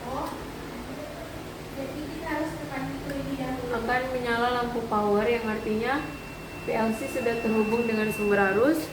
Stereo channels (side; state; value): both; identical; correlation 1.00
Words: akan menyala lampu power, yang artinya PLC sudah terhubung dengan sumber arus